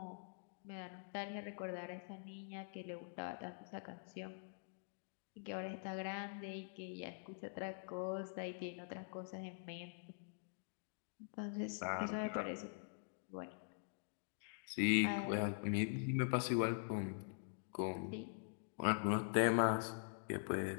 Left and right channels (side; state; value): right; silent; digital silence